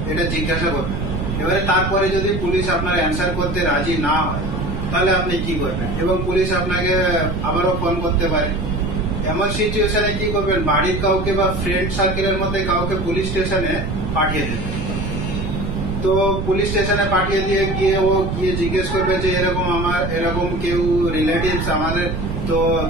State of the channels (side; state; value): right; noise; rumble, 3 dB below the sound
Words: এটা জিজ্ঞাসা করবেন। এবারে তারপরে যদি পুলিশ আপনার অ্যান্সার করতে রাজি না হয় তাহলে আপনি কি করবেন? এবং পুলিশ আপনাকে আবারও ফোন করতে পারে। এমন সিচুয়েশনে কি করবেন? বাড়ির কাউকে বা ফ্রেন্ড সার্কেলের মধ্যে কাউকে পুলিশ স্টেশনে পাঠিয়ে দেবেন। তো পুলিশ স্টেশনে পাঠিয়ে দিয়ে গিয়ে জিজ্ঞেস করবে যে এরকম কেউ রিলেটিভস আমাদের, তো